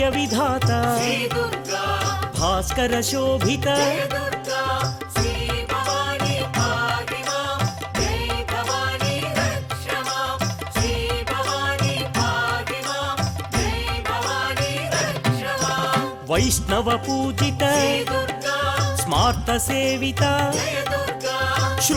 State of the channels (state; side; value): identical; both; correlation 1.00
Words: विधाता भास्कर शोभित वैष्णव पूजित स्मार्त सेविता